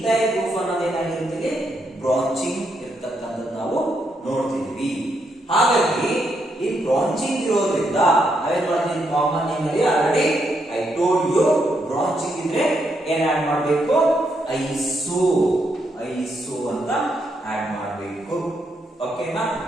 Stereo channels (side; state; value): both; normal; correlation 0.78